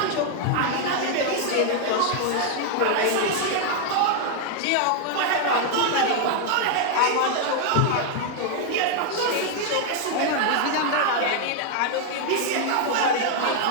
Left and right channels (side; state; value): both; different; correlation 0.00